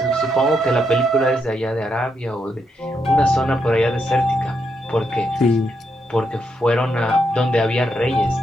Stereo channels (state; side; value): normal; both; correlation 0.80